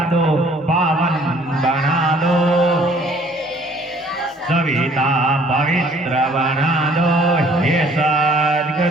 दो पावन बना दो सविता पवित्र बना दो हे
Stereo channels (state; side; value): normal; both; correlation 0.58